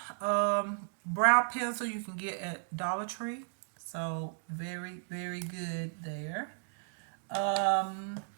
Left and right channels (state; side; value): silent; left; digital silence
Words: brow pencil you can get at Dollar Tree. So very, very good there. Um,